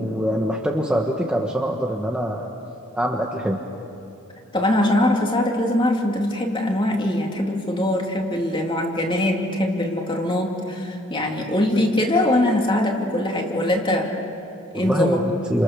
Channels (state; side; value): normal; both; correlation 0.66